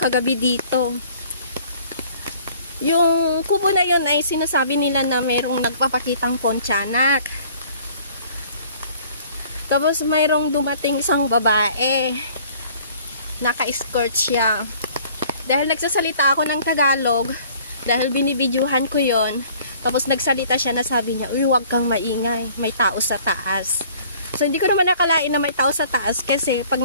kagabi dito. Yung kubo na yun ay sinasabi nila na mayroong nagpapakitang Pontianak. Tapos mayroong dumating isang babae. Naka-skirt siya. Dahil nagsasalita ako ng Tagalog, dahil binibidyuhan ko yon, tapos nagsalita siya na sabi niya, uy, huwag kang maingay, may tao sa taas. So hindi ko naman nakalain na may tao sa taas kasi pag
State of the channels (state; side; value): inverted; both; correlation -0.54